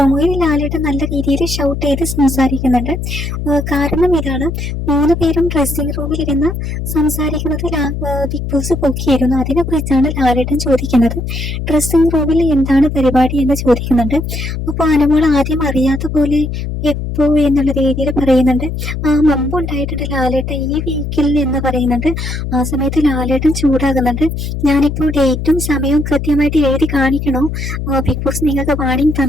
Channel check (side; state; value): left; noise; hum, 4 dB below the sound